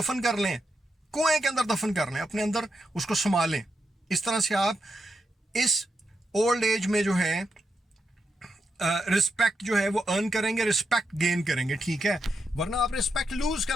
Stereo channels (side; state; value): both; normal; correlation 0.84